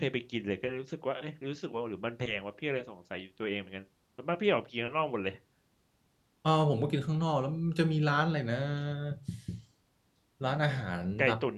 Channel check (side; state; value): both; identical; correlation 1.00